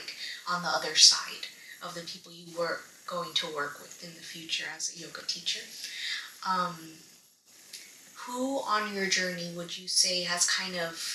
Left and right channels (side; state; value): both; identical; correlation 1.00